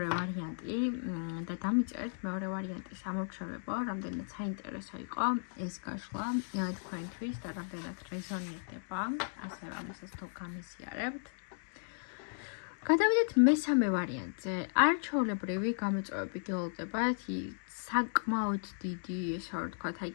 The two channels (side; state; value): right; silent; digital silence